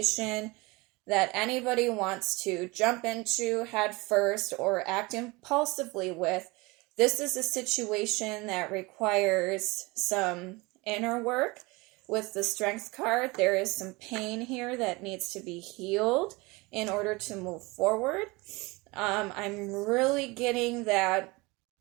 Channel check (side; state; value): left; quieter; 24.2 dB